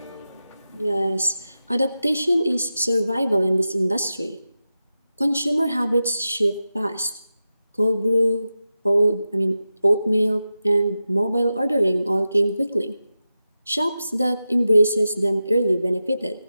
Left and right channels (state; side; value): inverted; both; correlation -0.92